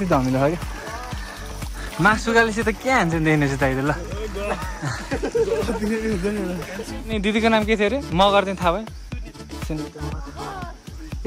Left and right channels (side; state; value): both; identical; correlation 1.00